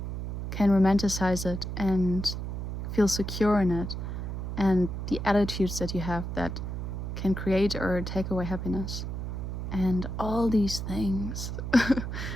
can romanticize it and feel secure in it, and the attitudes that you have that can create or take away happiness, and all these things.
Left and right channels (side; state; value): right; noise; hum, 5 dB below the sound